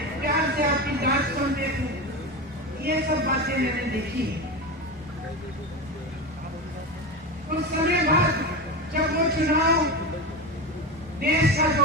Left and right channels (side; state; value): both; normal; correlation 0.21